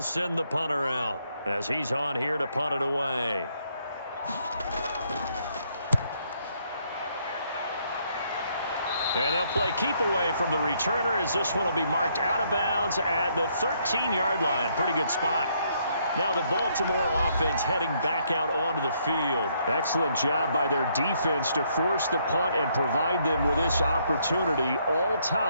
send the punter out as he's on here to punt it away. And they'll play keep away from the returner as this one will be marked out of bounds at the 13-yard line. Pretty good spot. Now the Baltimore offense heading back out onto the field. Excellent job by their defense to force the punt and provide them with this opportunity, all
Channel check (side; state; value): both; inverted; correlation -0.71